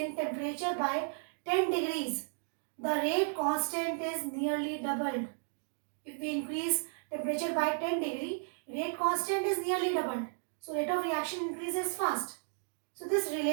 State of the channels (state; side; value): silent; left; digital silence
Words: temperature by 10 degrees, the rate constant is nearly doubled. If we increase temperature by 10 degree, rate constant is nearly doubled. So rate of reaction increases fast. So this